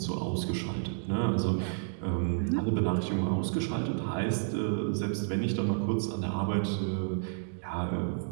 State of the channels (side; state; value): left; silent; digital silence